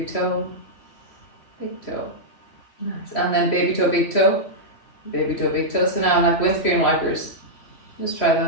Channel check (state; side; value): late; right; 3.1 ms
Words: toe. Big toe. Nice. And then baby toe, big toe. Baby toe, big toe. So now like windscreen wipers. Just try